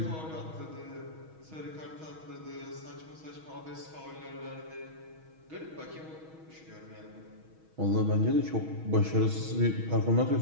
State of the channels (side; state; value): left; late; 6.3 ms